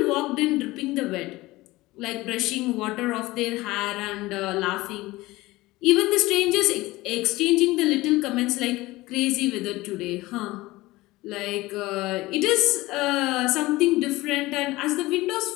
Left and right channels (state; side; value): quieter; right; 19.4 dB